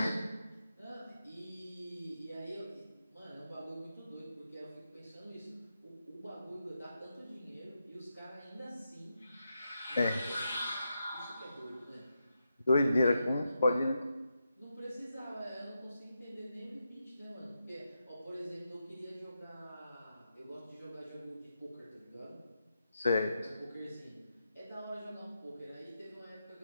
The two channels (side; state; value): both; inverted; correlation -0.86